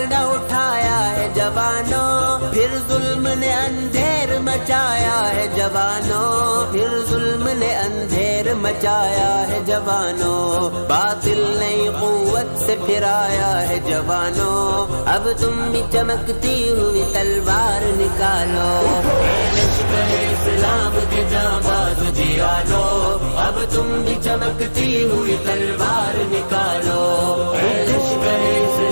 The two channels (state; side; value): inverted; both; correlation -1.00